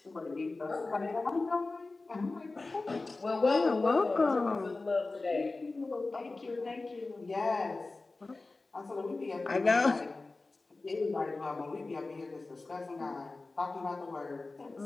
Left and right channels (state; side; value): quieter; right; 3.4 dB